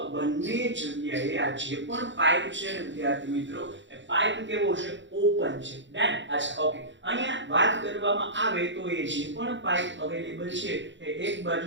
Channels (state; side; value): late; left; 0.54 ms